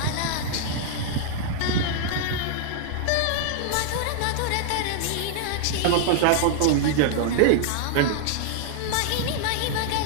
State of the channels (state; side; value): different; both; correlation -0.01